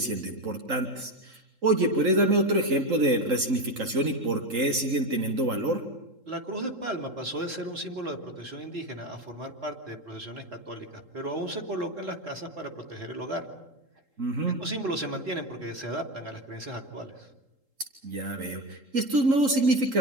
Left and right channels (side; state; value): left; late; 3.8 ms